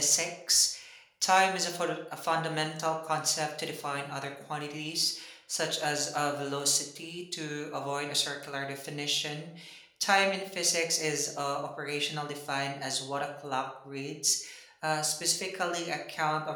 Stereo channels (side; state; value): both; identical; correlation 1.00